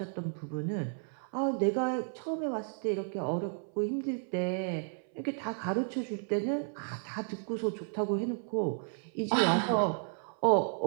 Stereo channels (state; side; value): silent; left; 56 dB below the other